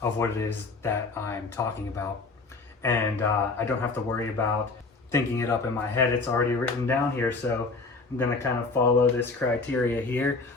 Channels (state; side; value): quieter; right; 3.9 dB